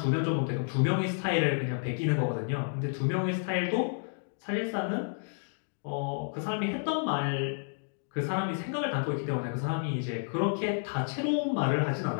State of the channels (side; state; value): right; silent; digital silence